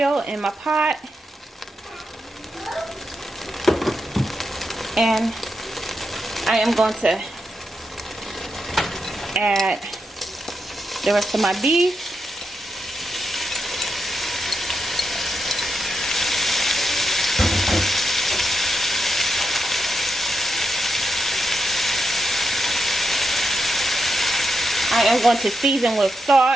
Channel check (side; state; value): both; normal; correlation 0.85